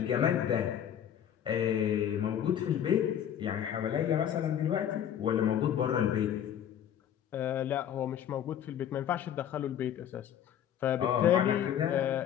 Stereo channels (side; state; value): right; quieter; 9.8 dB